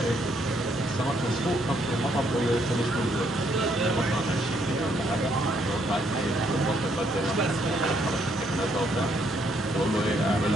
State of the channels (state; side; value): normal; both; correlation 0.71